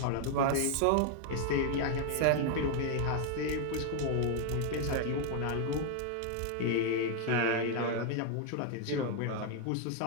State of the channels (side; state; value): both; different; correlation 0.00